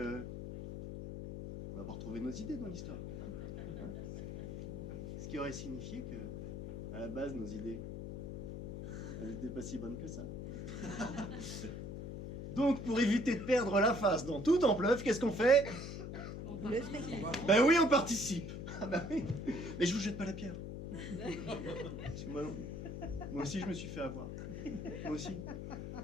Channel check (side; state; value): left; noise; hum, 7 dB below the sound